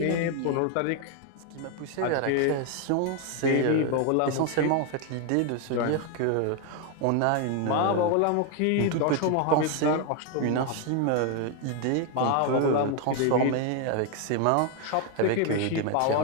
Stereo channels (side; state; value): both; different; correlation 0.01